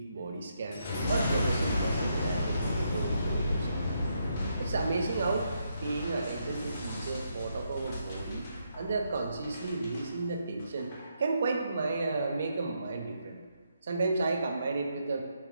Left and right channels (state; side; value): inverted; both; correlation -0.78